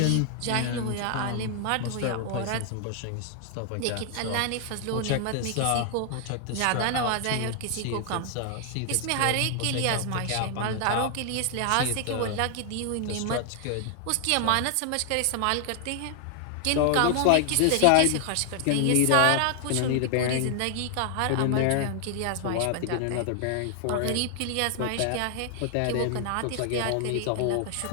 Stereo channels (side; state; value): both; different; correlation 0.00